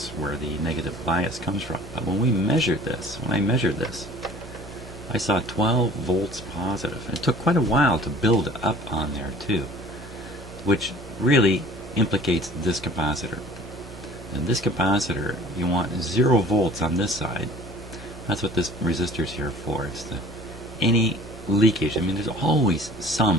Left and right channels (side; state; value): both; normal; correlation 0.48